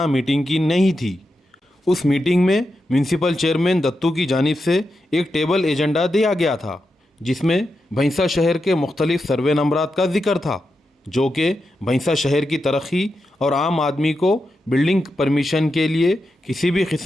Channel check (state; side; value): normal; both; correlation 0.88